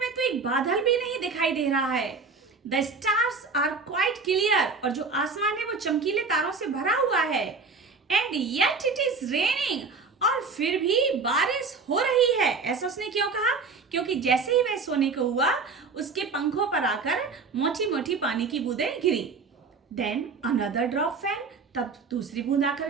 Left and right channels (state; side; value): quieter; left; 4.5 dB